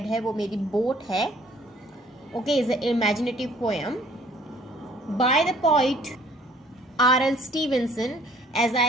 है वो मेरी boat है. Okay, is an imaginative poem by the poet R.L. Stevenson. As I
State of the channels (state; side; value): normal; both; correlation 0.57